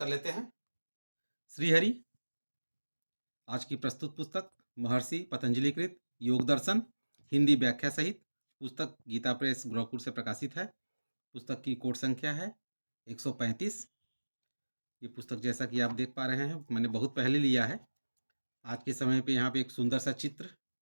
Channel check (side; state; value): both; inverted; correlation -1.00